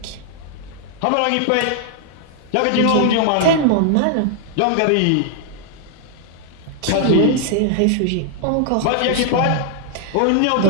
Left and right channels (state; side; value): different; both; correlation -0.01